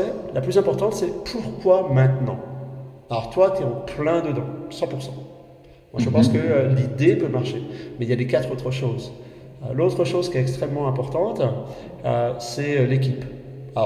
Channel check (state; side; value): identical; both; correlation 1.00